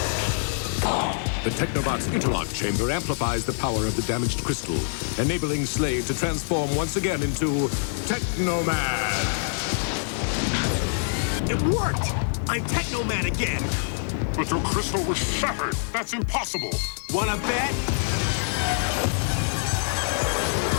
The Technobot's interlock chamber amplifies the power of the damaged crystal, enabling Slade to transform once again into Teknoman. It worked! I'm Teknoman again! But your crystal was shattered. That's impossible. Wanna bet?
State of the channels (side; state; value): right; silent; digital silence